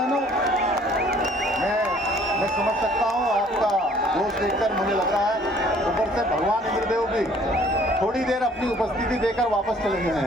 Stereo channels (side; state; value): both; normal; correlation 0.57